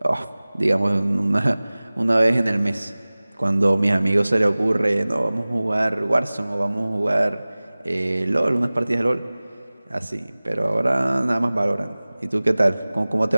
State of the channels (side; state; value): both; inverted; correlation -0.99